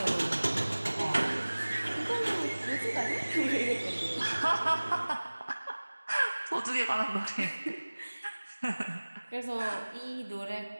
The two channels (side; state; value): both; inverted; correlation -1.00